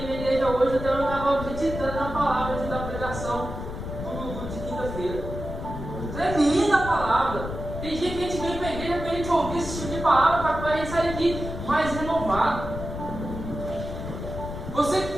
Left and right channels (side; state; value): left; noise; rumble, 7 dB below the sound